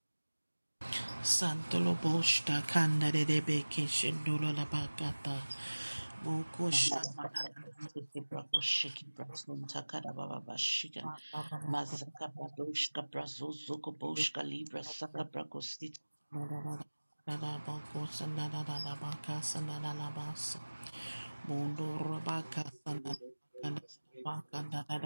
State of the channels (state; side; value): inverted; both; correlation -1.00